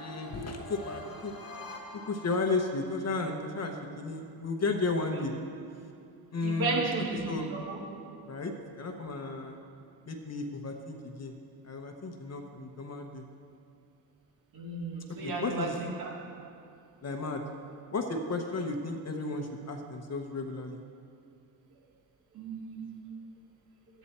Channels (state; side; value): normal; both; correlation 0.12